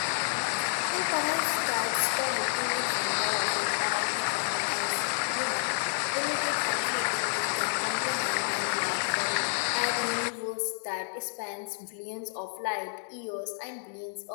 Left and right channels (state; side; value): silent; right; digital silence